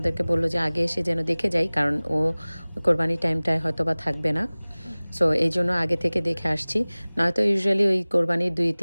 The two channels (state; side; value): inverted; both; correlation -1.00